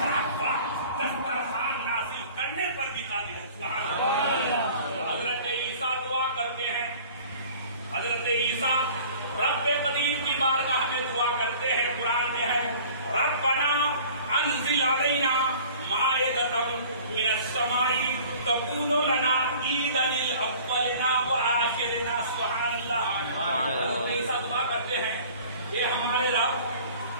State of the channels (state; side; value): inverted; both; correlation -0.48